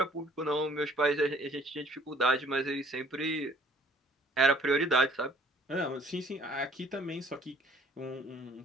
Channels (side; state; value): both; normal; correlation 0.56